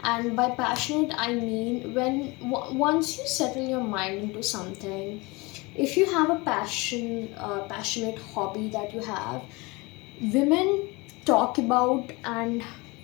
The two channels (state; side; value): quieter; right; 25.2 dB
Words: And by passionate, I mean when once you settle your mind into something, if you have a passionate hobby that you have, women talk about and